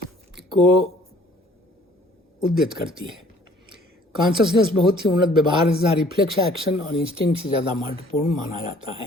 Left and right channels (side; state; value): both; normal; correlation 0.56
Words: को उद्यत करती है। कॉन्शसनेस बहुत ही उन्नत व्यवहार तथा रिफ्लेक्स एक्शन और इंस्टिंक्ट से ज़्यादा महत्वपूर्ण माना जाता